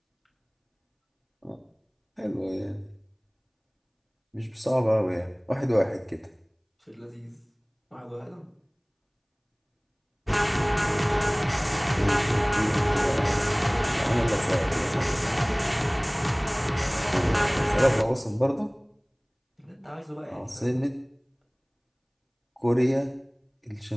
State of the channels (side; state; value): both; identical; correlation 1.00